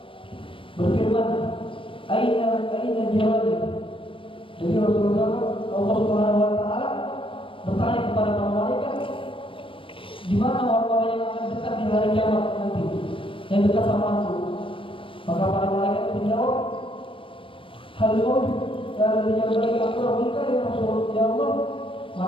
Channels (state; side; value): late; right; 0.25 ms